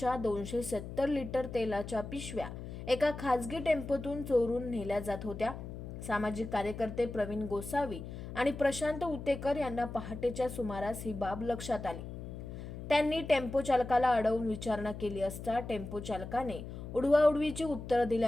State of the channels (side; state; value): left; noise; hum, 9 dB below the sound